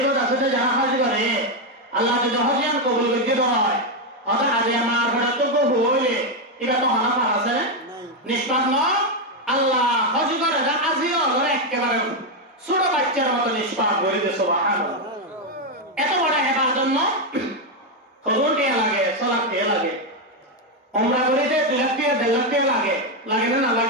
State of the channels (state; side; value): normal; both; correlation 0.05